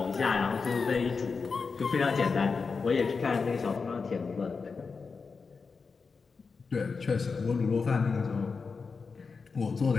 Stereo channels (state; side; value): quieter; right; 4.9 dB